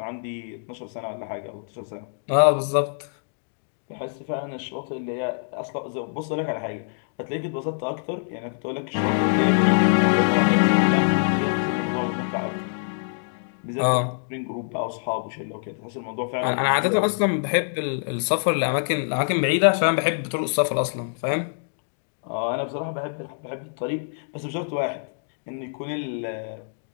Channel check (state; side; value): silent; right; digital silence